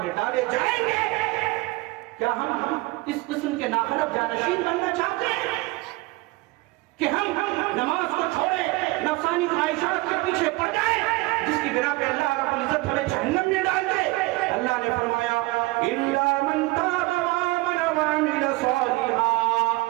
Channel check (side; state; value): left; quieter; 22.1 dB